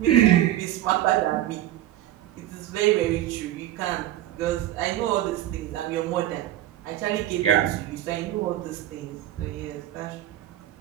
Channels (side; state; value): left; quieter; 13.3 dB